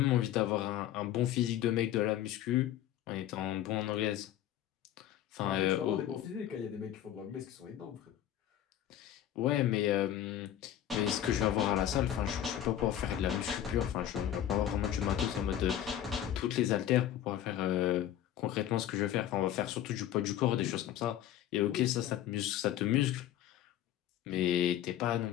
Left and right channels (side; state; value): right; quieter; 11.7 dB